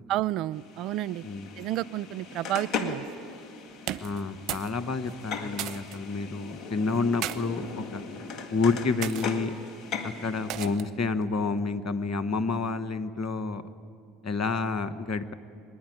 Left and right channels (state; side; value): normal; both; correlation 0.49